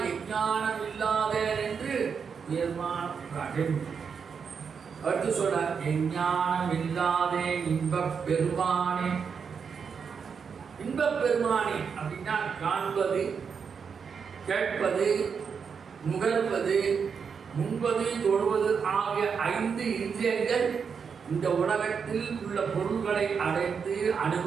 எஞ்ஞானம் இல்லாத என்று உயர்மான அடுத்து சொல்றார், எஞ்ஞானம் இல்லாதே இன்பப் பெருமானே. இன்பப் பெருமானே அப்படின்னா காண்பது, கேட்பது, நுகர்வது, முன்பது, தொடுவது ஆகிய 5 இந்திரியங்கள் இந்த உலகத்தில் உள்ள பொருள்களை அடைந்து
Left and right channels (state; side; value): quieter; left; 6.2 dB